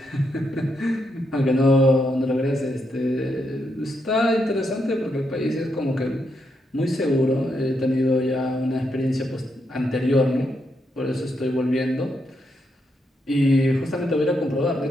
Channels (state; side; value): normal; both; correlation 0.80